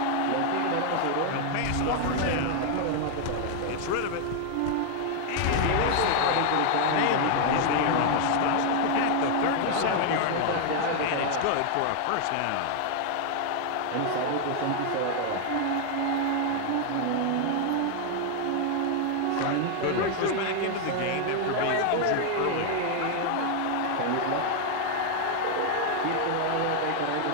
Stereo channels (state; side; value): different; both; correlation 0.00